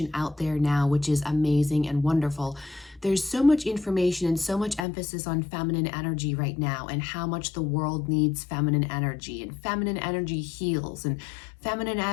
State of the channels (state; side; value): drops out; right; at 4.8 s